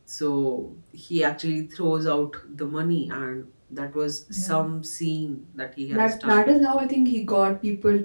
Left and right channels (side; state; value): both; inverted; correlation -1.00